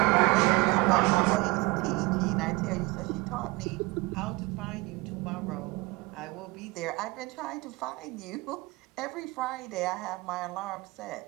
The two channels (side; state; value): left; quieter; 23.8 dB